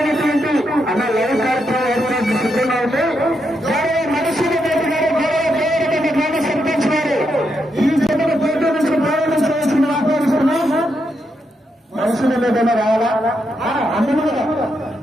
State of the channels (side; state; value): both; normal; correlation 0.81